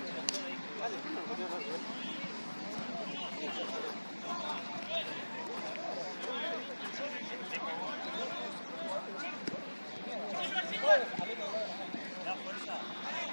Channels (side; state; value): both; inverted; correlation -1.00